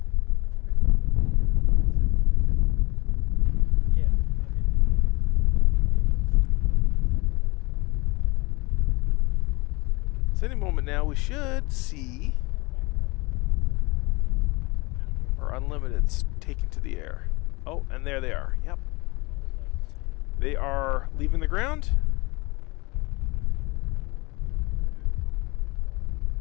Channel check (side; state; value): right; quieter; 24.9 dB